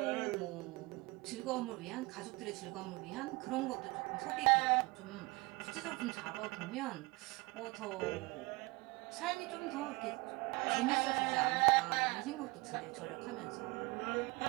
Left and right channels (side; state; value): left; quieter; 23.8 dB